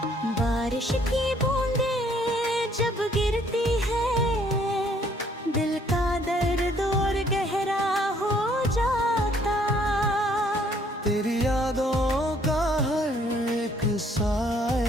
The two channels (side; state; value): both; normal; correlation 0.64